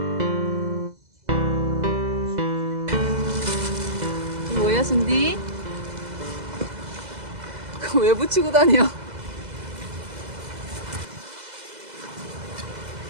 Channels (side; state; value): left; late; 2.0 ms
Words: 뭐야, 순디? 그거 왜 붙이고 다녀?